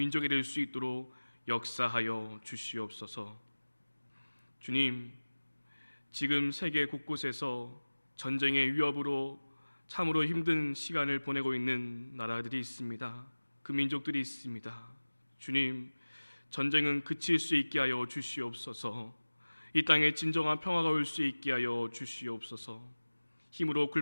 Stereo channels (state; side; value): inverted; both; correlation -1.00